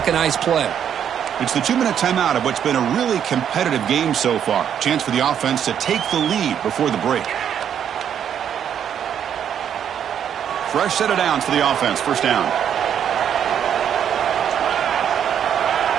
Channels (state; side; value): quieter; left; 8.9 dB